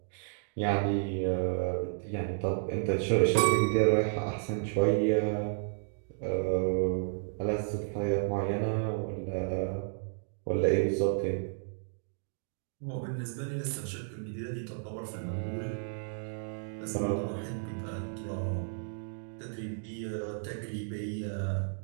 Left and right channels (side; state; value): left; silent; digital silence